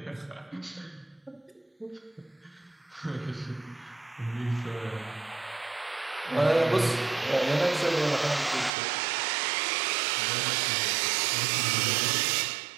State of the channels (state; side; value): drops out; left; at 8.7 s